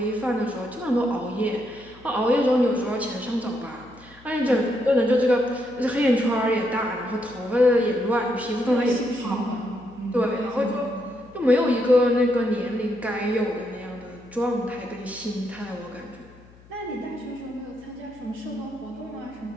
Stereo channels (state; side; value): noise; left; hum, 25 dB below the sound